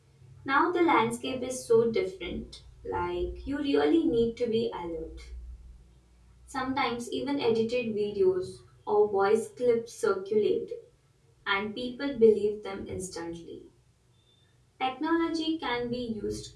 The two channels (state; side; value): identical; both; correlation 1.00